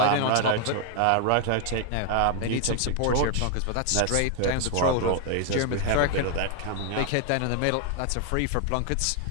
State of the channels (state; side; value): different; both; correlation 0.00